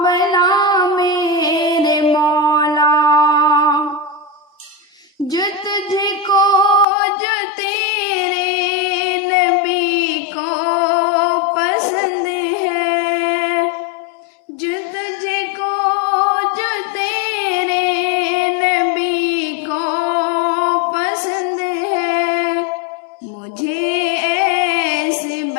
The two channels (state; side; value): drops out; right; at 6.9 s